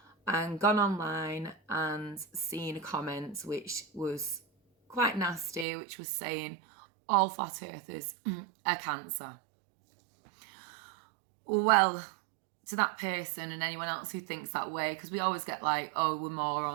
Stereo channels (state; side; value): drops out; left; at 5.7 s